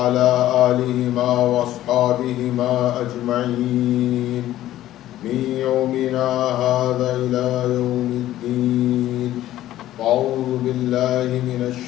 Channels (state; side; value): quieter; right; 13.8 dB